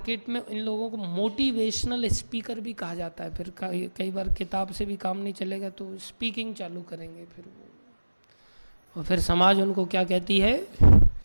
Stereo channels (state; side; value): inverted; both; correlation -1.00